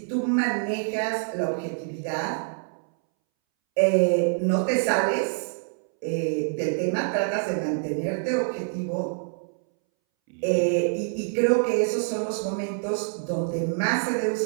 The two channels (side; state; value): left; silent; 61 dB below the other